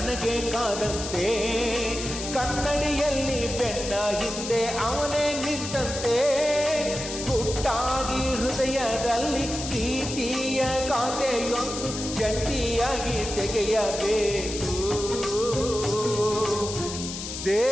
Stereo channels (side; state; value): left; noise; hiss, 7 dB below the sound